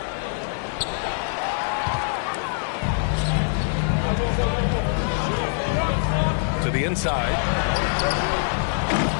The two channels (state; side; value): silent; right; digital silence